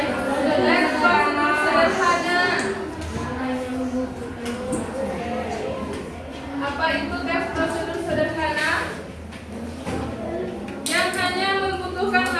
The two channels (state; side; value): identical; both; correlation 1.00